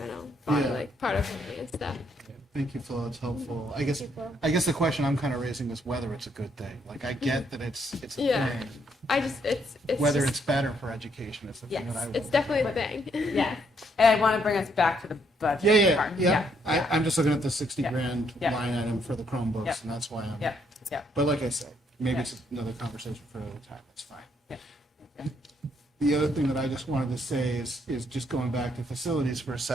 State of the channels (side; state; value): both; normal; correlation 0.72